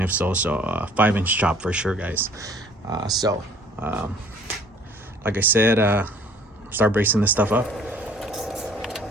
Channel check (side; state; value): both; normal; correlation 0.55